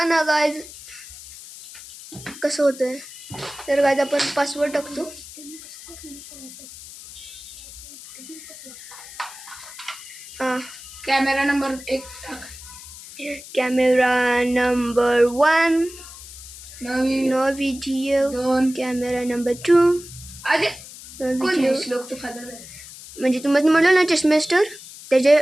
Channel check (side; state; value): left; noise; hiss, 16 dB below the sound